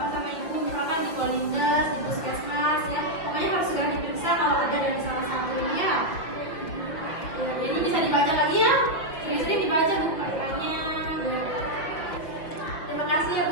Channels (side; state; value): right; late; 5.8 ms